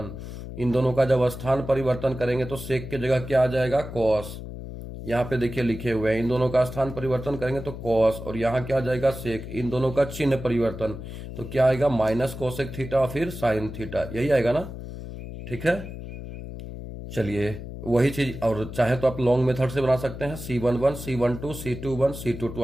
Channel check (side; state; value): left; noise; hum, 10 dB below the sound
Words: इन दोनों का जब स्थान परिवर्तन करेंगे तो सेक की जगह क्या आ जाएगा, कॉस। यहाँ पे देखिए लिखे हुए हैं, इन दोनों का स्थान परिवर्तन करेंगे तो कॉस, और यहाँ क्या आ जाएगा, सेक। इन दोनों का चिन्ह परिवर्तन तो क्या आएगा, माइनस कोसेक थीटा फिर साइन थीटा, यही आएगा ना, ठीक है। चलिए वही चीज, और चाहे तो आप लॉन्ग मेथड से बना सकते हैं, C11 C12 C21 C22,